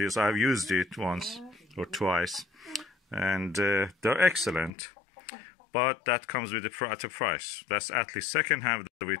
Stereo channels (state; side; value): drops out; right; at 4.7 s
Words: I've used it once or twice. And they're excellent. But that comes with at a price. That's at least second hand of